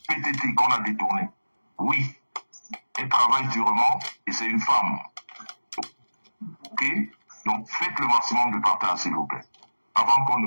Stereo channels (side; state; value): both; inverted; correlation -1.00